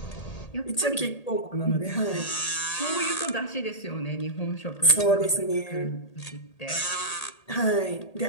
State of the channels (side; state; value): right; late; 1.8 ms